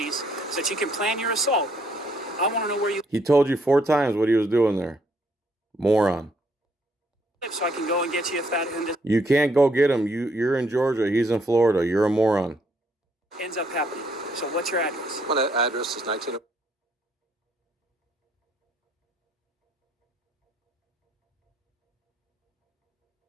so that you can plan your assault, I want to know where you He told you 4 times what he was doing there. Moron. live so I can go and get you if that You can't go get him. You're in Georgia. He's in Florida. You're a moron. ends up happening. So what's your address? My address is 19.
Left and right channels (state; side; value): normal; both; correlation 0.70